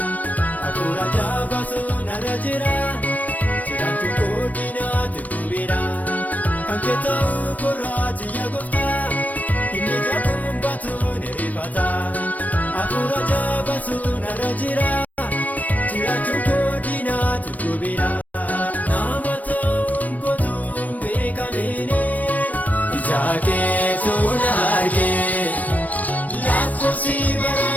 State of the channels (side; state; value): right; late; 0.074 ms